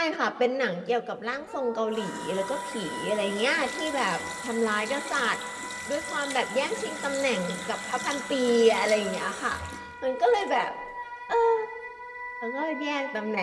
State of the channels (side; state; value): both; identical; correlation 1.00